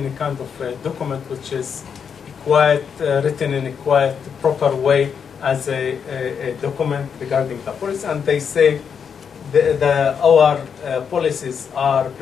a kind of document which is quite written in a quite proper way as a document regarding the policy. And they say our policies are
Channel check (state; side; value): quieter; right; 6.9 dB